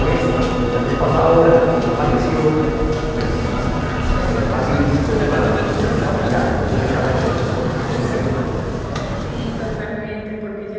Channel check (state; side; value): identical; both; correlation 1.00